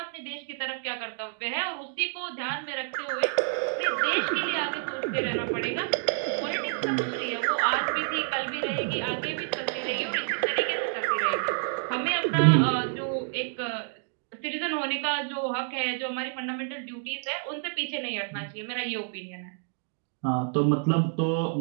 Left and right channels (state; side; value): silent; left; 59 dB below the other